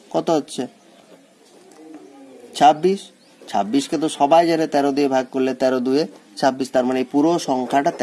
কত হচ্ছে 26। 26কে তো সবাই জানে 13 দিয়ে ভাগ করলে 13 2 26, তার মানে এই পুরো সংখ্যাটা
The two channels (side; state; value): both; identical; correlation 1.00